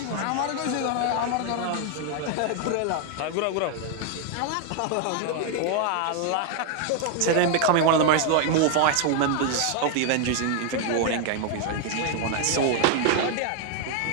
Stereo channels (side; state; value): both; different; correlation 0.00